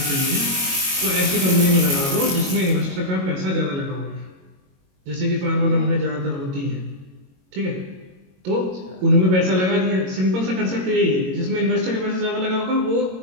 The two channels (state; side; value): late; left; 22 ms